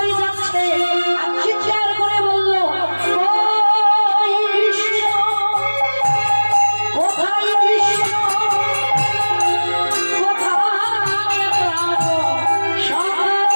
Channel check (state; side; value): inverted; both; correlation -1.00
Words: যাচ্ছে, আর চিৎকার করে বলল ওই